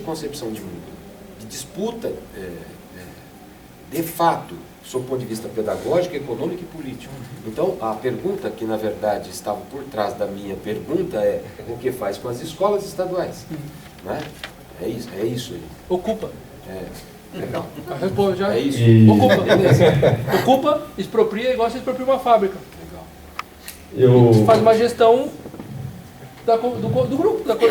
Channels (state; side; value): identical; both; correlation 1.00